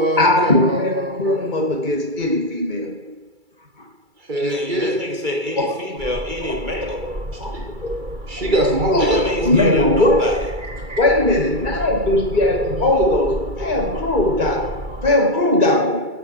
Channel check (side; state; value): left; late; 2.3 ms